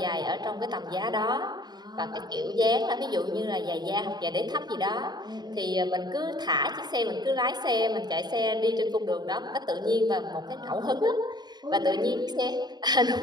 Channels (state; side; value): late; left; 0.20 ms